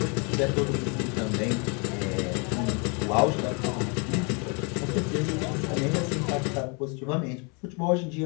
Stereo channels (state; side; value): quieter; right; 33.6 dB